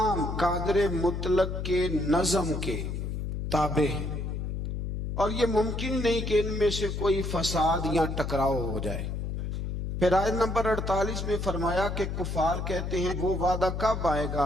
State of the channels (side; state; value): left; noise; hum, 3 dB below the sound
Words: قادر مطلق کے نظم کے تابع ہیں، اور یہ ممکن نہیں کہ ان میں سے کوئی فساد یا ٹکراؤ ہو جائے۔ پھر آیت نمبر 48 میں فرمایا کہ کفار کہتے ہیں وہ وعدہ کب آئے گا